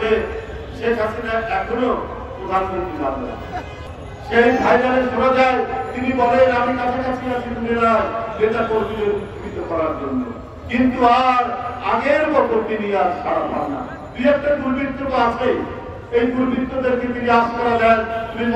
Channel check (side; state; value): both; identical; correlation 1.00